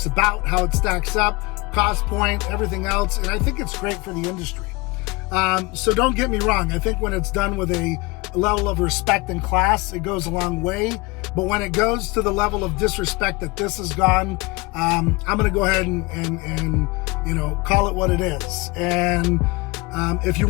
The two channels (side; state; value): right; quieter; 24.1 dB